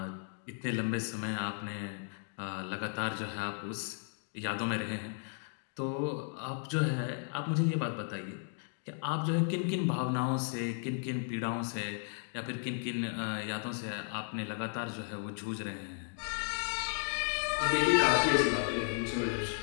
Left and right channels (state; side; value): silent; right; 55 dB below the other